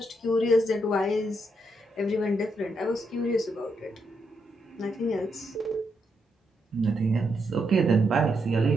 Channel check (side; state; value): both; normal; correlation 0.80